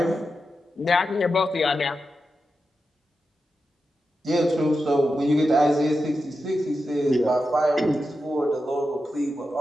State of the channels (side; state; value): both; normal; correlation 0.89